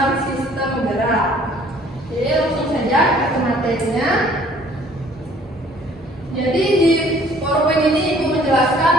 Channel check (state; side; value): normal; both; correlation 0.56